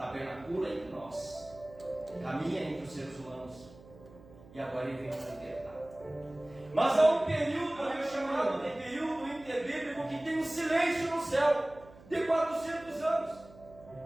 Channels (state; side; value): noise; right; hum, 21 dB below the sound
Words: entre nós, caminha entre os seres humanos, e agora Ele vem para libertar. Mas há um período, chamado de período interbíblico, que tem um silêncio no céu, de 400 anos.